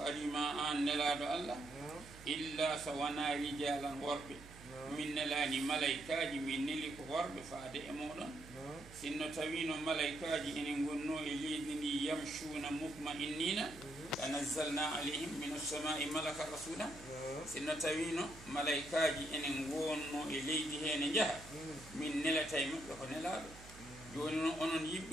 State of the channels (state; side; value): noise; right; hum, 17 dB below the sound